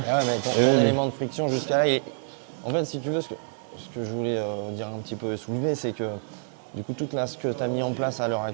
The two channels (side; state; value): left; silent; 60 dB below the other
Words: mais ton élément de friction jusqu'à là, en fait si tu veux ce que je voulais dire un petit peu et soulever, c'est que du coup, ce que tu as mis en place à l'heure